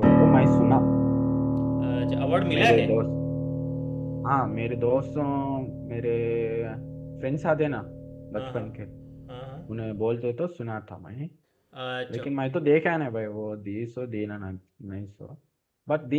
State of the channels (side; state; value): both; identical; correlation 1.00